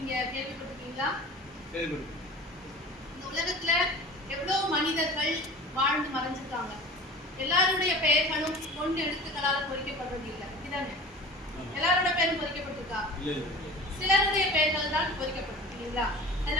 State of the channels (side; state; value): both; normal; correlation 0.39